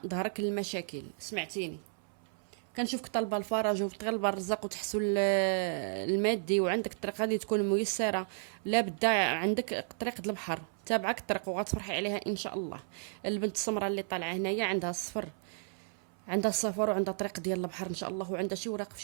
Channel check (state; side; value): silent; left; 56 dB below the other